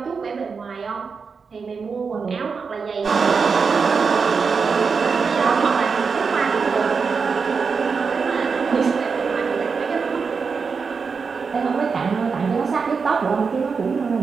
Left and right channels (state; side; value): quieter; left; 5.3 dB